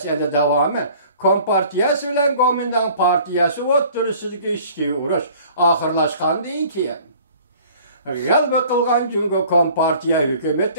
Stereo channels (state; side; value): inverted; both; correlation -0.51